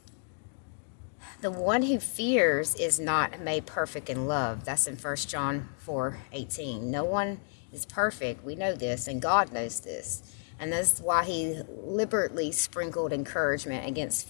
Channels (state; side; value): silent; right; digital silence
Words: The one who fears is not made perfect in love. That's in 1 John 4:18. No one is perfect. We know this, and God knows this. And that's why he liberally sprinkled encouragement against